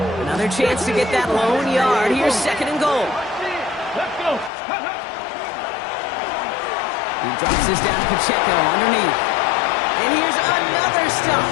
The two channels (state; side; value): drops out; right; at 4.5 s